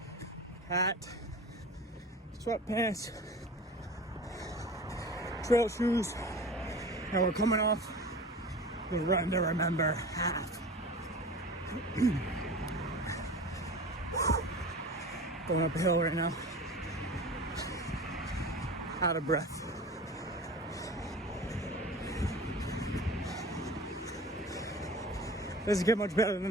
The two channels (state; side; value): normal; both; correlation 0.36